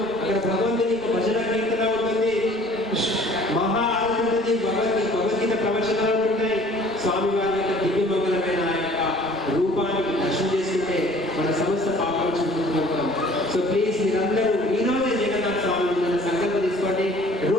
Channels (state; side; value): normal; both; correlation 0.52